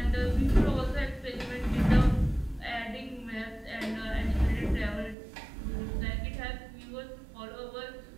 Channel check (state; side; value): drops out; left; at 5.2 s